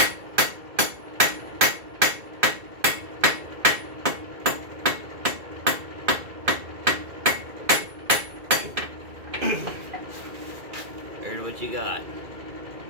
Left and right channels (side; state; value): left; late; 2.4 ms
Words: There's what you got.